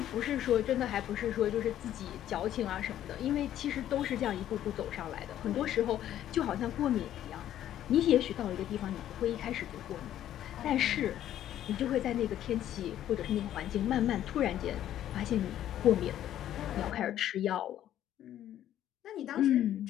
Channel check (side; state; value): right; quieter; 11.7 dB